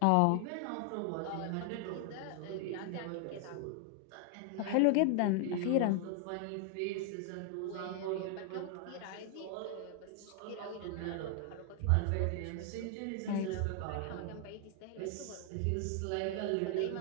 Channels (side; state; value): both; different; correlation 0.00